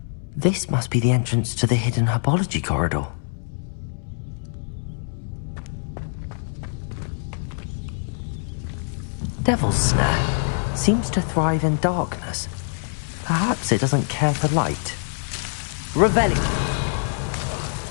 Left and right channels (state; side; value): silent; right; 63 dB below the other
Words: This must be the entrance to the hidden herbology corridor. Devil's Snare seems to thrive in darkness. Perhaps it doesn't care for light. Revelio.